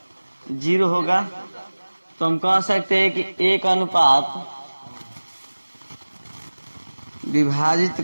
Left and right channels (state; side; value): inverted; both; correlation -1.00